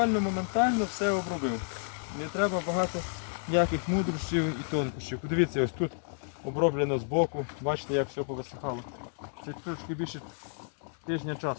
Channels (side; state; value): right; silent; 57 dB below the other